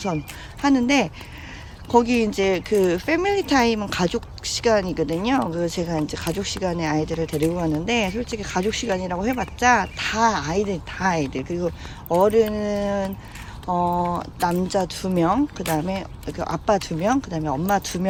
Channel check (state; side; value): identical; both; correlation 1.00